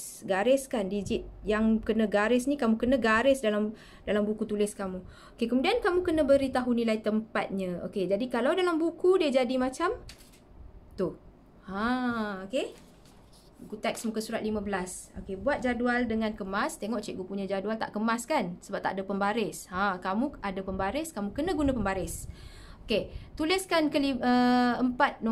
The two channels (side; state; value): both; identical; correlation 1.00